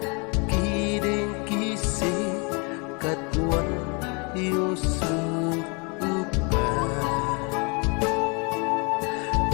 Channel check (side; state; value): right; quieter; 32.6 dB